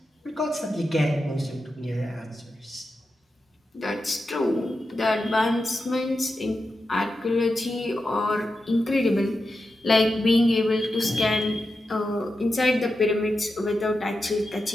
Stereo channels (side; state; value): both; normal; correlation 0.89